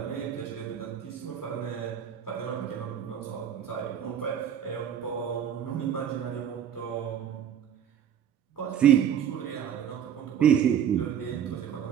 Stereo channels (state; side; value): quieter; left; 9.1 dB